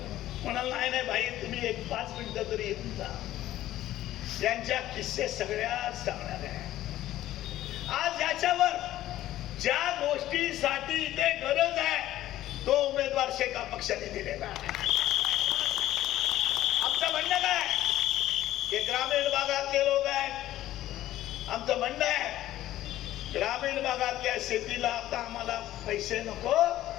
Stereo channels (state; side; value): quieter; right; 14.1 dB